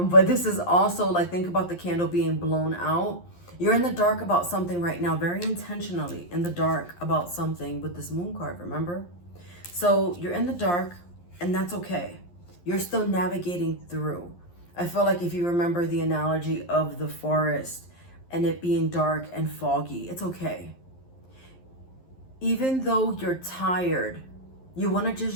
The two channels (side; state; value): right; late; 11 ms